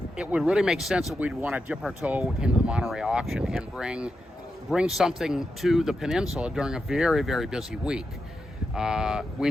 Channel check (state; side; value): normal; both; correlation 0.87